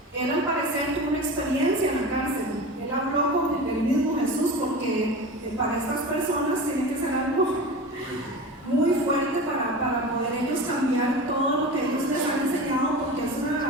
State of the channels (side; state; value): both; normal; correlation 0.31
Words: Él al parecer tuvo una experiencia en la cárcel. Él habló con el mismo Jesús, porque para estas personas tiene que ser algo muy fuerte para poder ellos cambiar todo lo que ellos les han enseñado, porque es